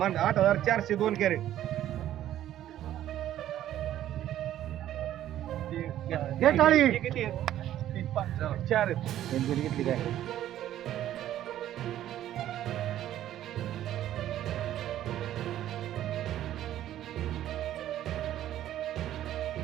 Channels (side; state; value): left; quieter; 12.3 dB